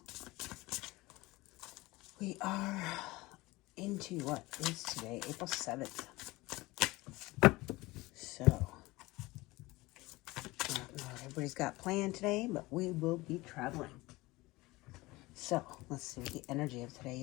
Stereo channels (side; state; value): right; quieter; 20.8 dB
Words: We are into what is today, April 7th. So, I don't know what everybody's got planned today, but we will be traveling. So, let's see what the energy of today